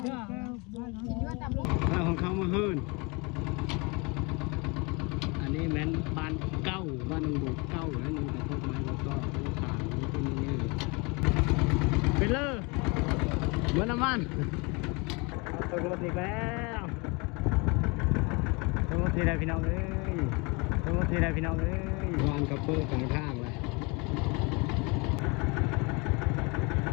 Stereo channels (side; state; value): right; quieter; 28.7 dB